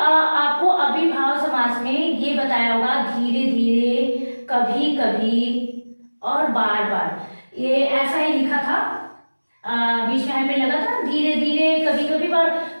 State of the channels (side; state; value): both; inverted; correlation -1.00